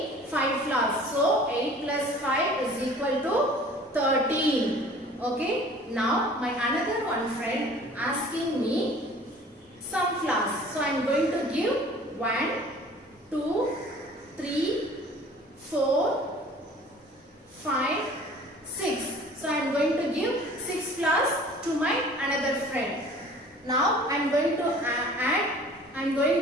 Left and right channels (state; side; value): normal; both; correlation 0.48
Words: 5 flowers. So 8 plus 5 is equal to 13. Okay. Now my another one friend asking me some flowers. So I am going to give 1, 2, 3, 4, 5, 6. So I am going to give 6 flowers to my another friend. Now I am going to I am